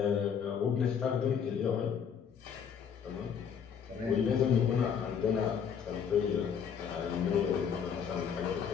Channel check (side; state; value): right; quieter; 7.4 dB